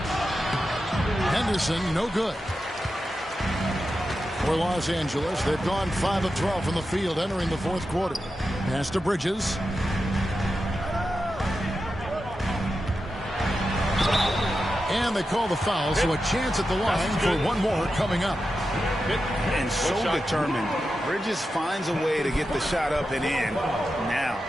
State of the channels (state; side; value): normal; both; correlation 0.90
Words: Henderson, no good. For Los Angeles, they've gone 5 of 12 from the field entering the 4th quarter. Pass to Bridges. And they call the foul, so a chance at the line for one more coming up. And so determined. Bridges finds a way to get the shot up and in. Now